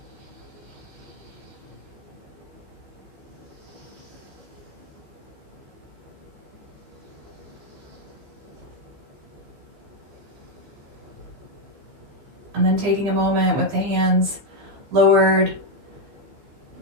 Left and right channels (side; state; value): left; late; 14 ms